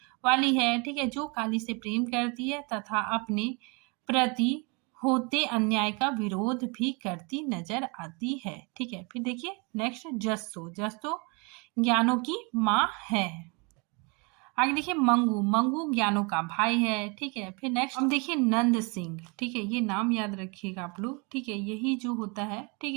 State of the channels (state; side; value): quieter; left; 30.8 dB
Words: वाली है। ठीक है, जो काली से प्रेम करती है तथा अपने प्रति होते अन्याय का विरोध भी करती नजर आती है। ठीक है, फिर देखिए नेक्स्ट जस्तो ज्ञानो की माँ है। आगे देखिए मंगू ज्ञानो का भाई है। ठीक है, फिर नेक्स्ट हम देखिए नंद सिंह। ठीक है, ये नाम याद रखिएगा आप लोग। ठीक है, यही जो होता है, ठीक